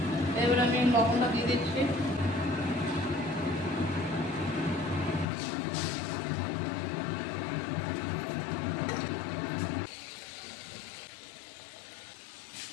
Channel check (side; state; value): right; drops out; at 5.2 s